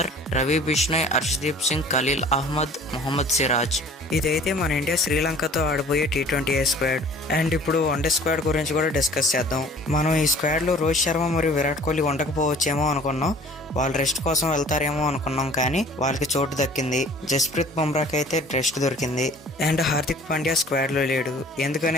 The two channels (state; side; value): normal; both; correlation 0.49